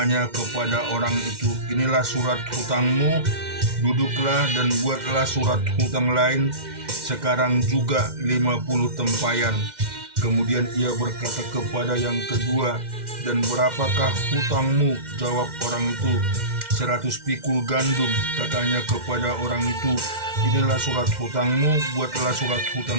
kepada orang itu, inilah surat hutangmu, duduklah dan buatlah surat hutang lain, sekarang juga 50 tempayan. Kemudian ia berkata kepada yang kedua, dan berapakah hutangmu? Jawab orang itu, 100 pikul gandum. Katanya kepada orang itu, inilah surat hutangmu, buatlah surat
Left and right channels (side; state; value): left; late; 2.1 ms